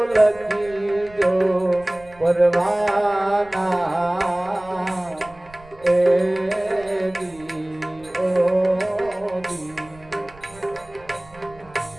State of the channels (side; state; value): right; noise; rumble, 24 dB below the sound